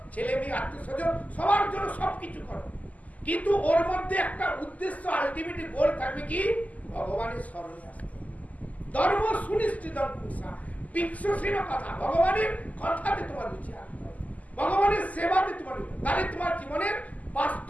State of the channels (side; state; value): right; late; 0.075 ms